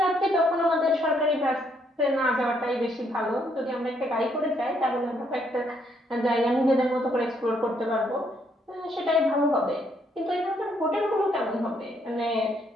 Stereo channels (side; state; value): both; normal; correlation 0.71